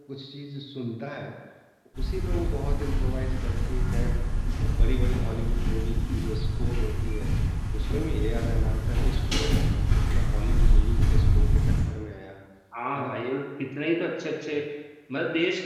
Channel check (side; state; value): both; identical; correlation 1.00